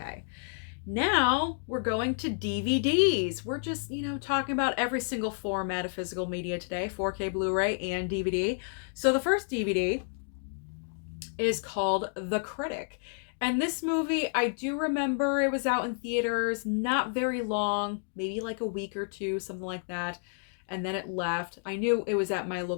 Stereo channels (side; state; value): right; silent; digital silence